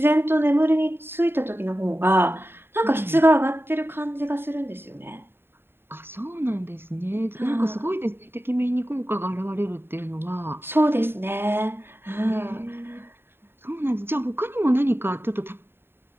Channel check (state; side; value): late; left; 0.11 ms